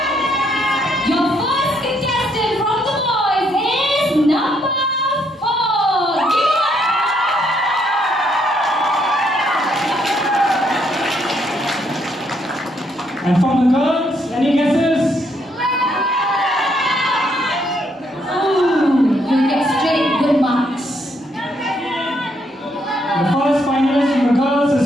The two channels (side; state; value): both; normal; correlation 0.73